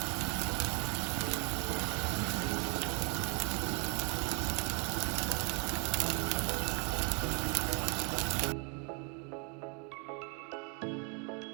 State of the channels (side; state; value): left; quieter; 35.3 dB